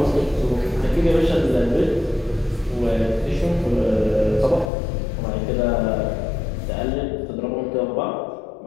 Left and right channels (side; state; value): right; drops out; at 4.7 s